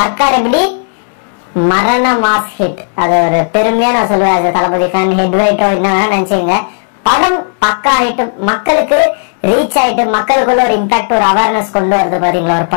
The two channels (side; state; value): right; silent; 64 dB below the other